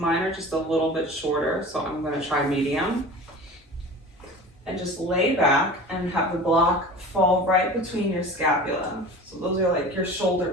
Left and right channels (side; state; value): both; normal; correlation 0.37